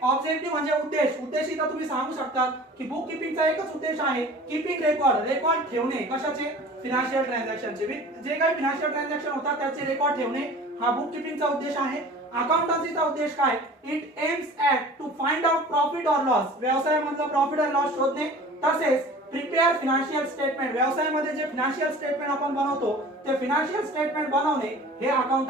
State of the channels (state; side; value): normal; both; correlation 0.42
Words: ऑब्जेक्टिव्ह म्हणजे उद्देश इथं तुम्ही सांगू शकता की बुक किपिंगचा एकच उद्देश आहे, कीपिंग रेकॉर्ड ठेवणे. कशाचे? फिनान्शियल ट्रान्झॅक्शनचे. जे काही फिनान्शियल ट्रान्झॅक्शन होतात त्याचे रेकॉर्ड ठेवणे हा बुक किपिंगचा उद्देश आहे. अकाउंटन्सीचा उद्देश काय? It aims at to find out profit or loss, व्यवसायामधला प्रॉफिट अँड लॉस शोधणे. तसेच प्रिपेअर फिनान्शियल स्टेटमेंट, व्यवसायामध्ये जे फिनान्शियल स्टेटमेंट आपण बनवतो ते फिनान्शियल स्टेटमेंट बनवणे हे